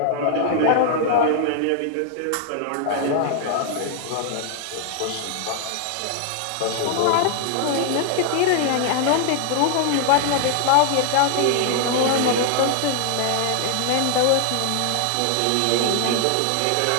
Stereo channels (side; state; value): both; different; correlation 0.00